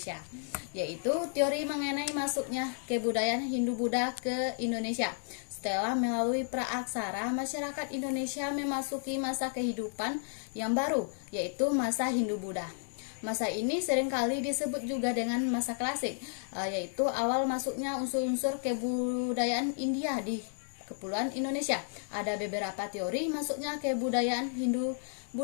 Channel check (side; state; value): right; silent; 56 dB below the other